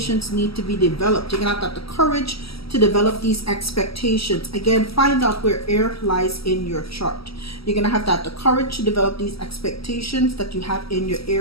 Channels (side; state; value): right; late; 0.75 ms